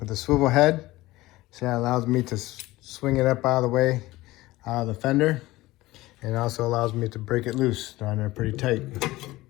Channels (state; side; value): quieter; right; 18.5 dB